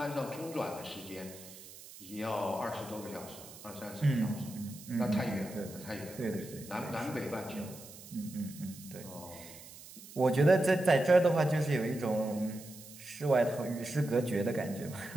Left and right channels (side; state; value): right; noise; hiss, 17 dB below the sound